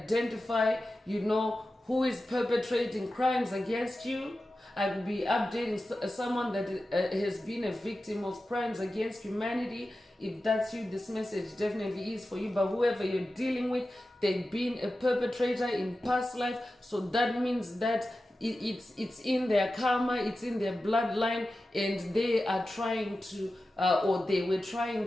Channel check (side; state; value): both; normal; correlation 0.93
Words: who is perpetrating crimes against you. I will be updating someone that has been a victim of crimes against humanity. If that's you, this message definitely is for you. But whoever you're dealing with, they've been a perpetrator in past life. So that means that it's in their karma, it's in their bloodline, and they are trying to, or they were trying